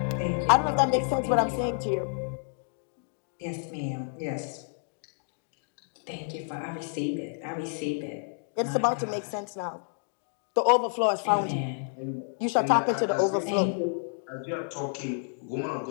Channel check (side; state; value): right; silent; 58 dB below the other